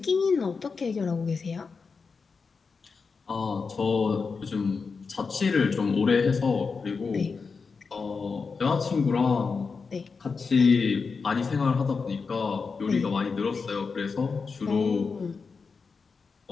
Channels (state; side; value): quieter; right; 4.9 dB